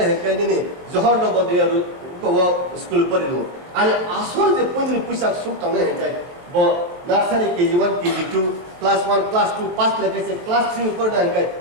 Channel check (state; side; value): late; left; 22 ms